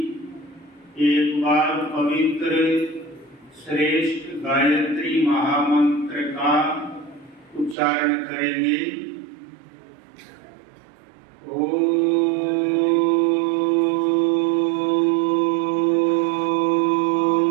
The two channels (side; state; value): left; drops out; at 7.8 s